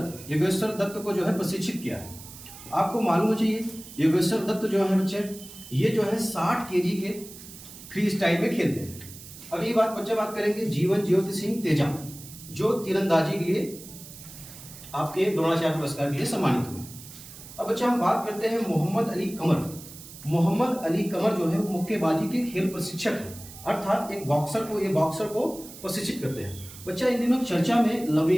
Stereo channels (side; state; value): right; noise; hiss, 16 dB below the sound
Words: दत्त को जो है प्रशिक्षित किया है। आपको मालूम होना चाहिए योगेश्वर दत्त जो है बच्चे ये जो है 60 केजी के फ्री स्टाइल में खेलते हैं। अगली बात करेंगे जीवन ज्योति सिंह तेजा, जो तीरंदाजी के लिए आपके द्रोणाचार्य पुरस्कार के लिए सम्मानित हुए। अब बच्चा हम बात करते हैं मोहम्मद अली कमर जो है वो मुक्केबाजी के खेल प्रशिक्षक हैं, अर्थात एक बॉक्सर को प्रशिक्षित करते हैं। बच्चा इन दिनों चर्चा में